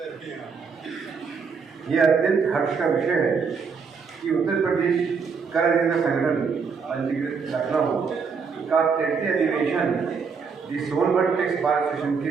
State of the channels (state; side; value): quieter; left; 5.6 dB